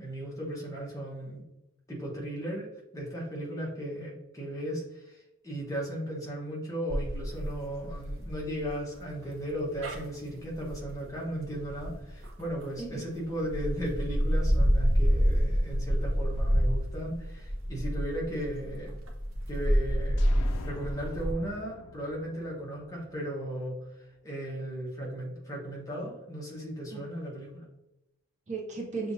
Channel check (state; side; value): normal; both; correlation 0.85